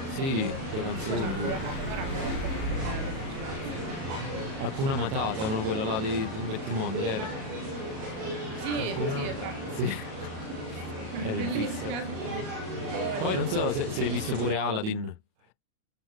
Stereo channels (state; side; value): late; left; 37 ms